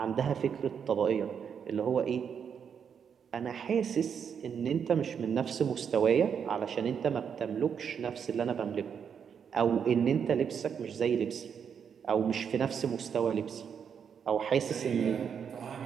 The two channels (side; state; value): left; quieter; 7.3 dB